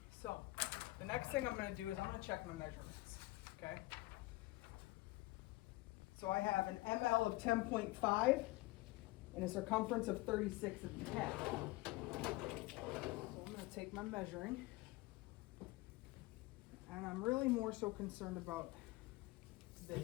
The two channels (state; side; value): quieter; right; 20.5 dB